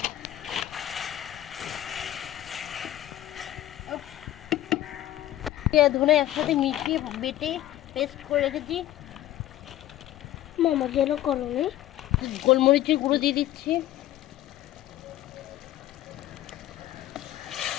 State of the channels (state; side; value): quieter; right; 13.7 dB